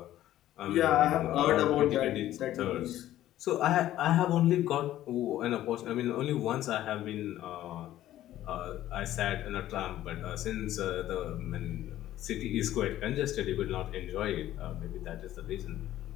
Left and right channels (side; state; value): right; quieter; 13.5 dB